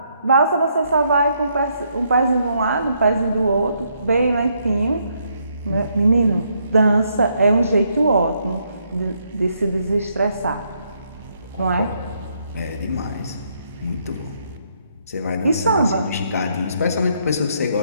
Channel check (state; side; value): inverted; both; correlation -0.74